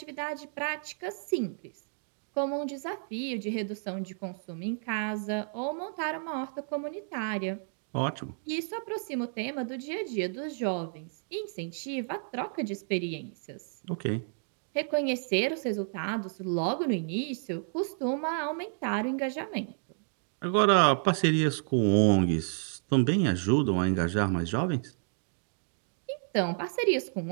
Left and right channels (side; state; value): left; silent; digital silence